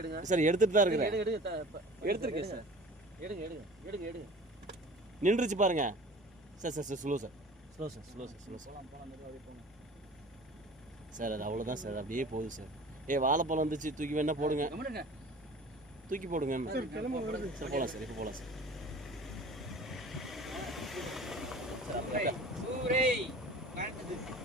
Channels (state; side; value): normal; both; correlation 0.42